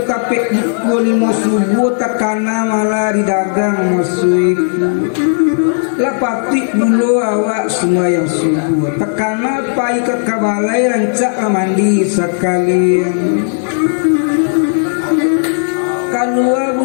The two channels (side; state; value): right; silent; digital silence